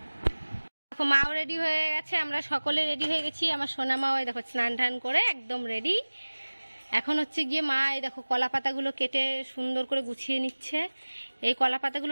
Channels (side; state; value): both; inverted; correlation -1.00